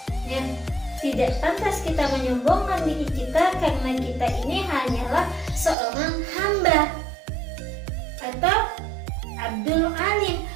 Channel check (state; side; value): drops out; left; at 5.8 s